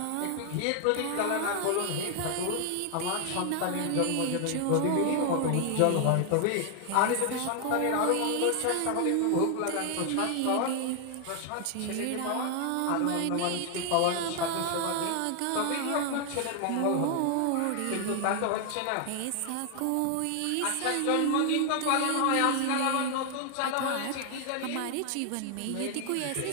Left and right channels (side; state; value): both; different; correlation 0.00